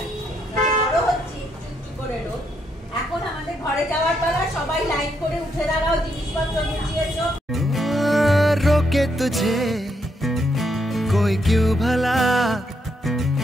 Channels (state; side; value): normal; both; correlation 0.77